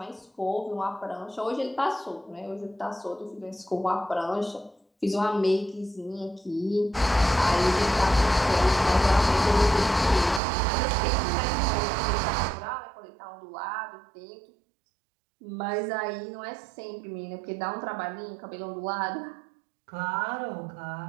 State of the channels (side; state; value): left; drops out; at 10.4 s